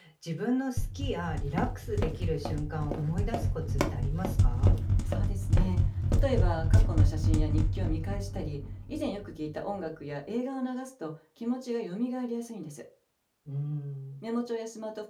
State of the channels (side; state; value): both; identical; correlation 1.00